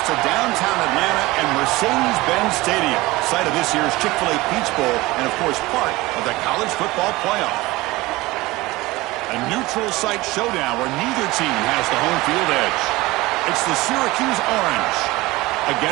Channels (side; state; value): left; quieter; 20.3 dB